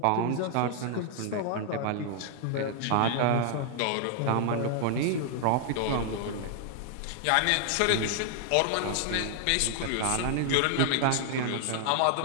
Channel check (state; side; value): different; both; correlation 0.00